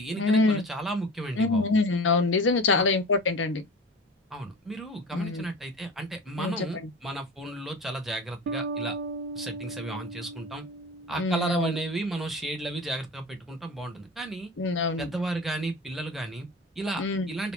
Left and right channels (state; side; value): normal; both; correlation 0.36